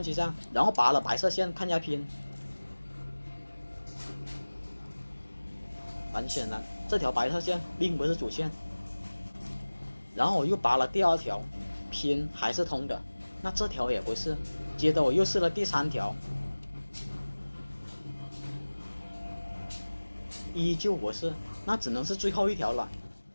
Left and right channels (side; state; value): both; inverted; correlation -1.00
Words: 机上，然后拔了白色线看一下拼。很显然，这条白色线并不是主线。然后我又拔了第2条，拼还是通的，那这条也不是。接着我又试了第3条，依旧不是，那只能是最后一条了。